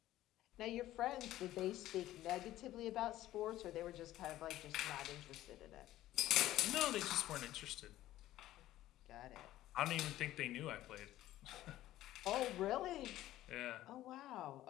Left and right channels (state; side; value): quieter; right; 14.6 dB